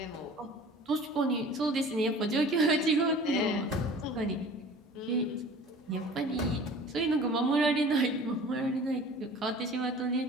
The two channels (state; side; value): normal; both; correlation 0.44